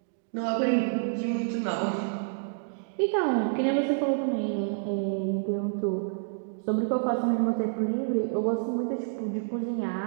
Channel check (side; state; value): left; silent; digital silence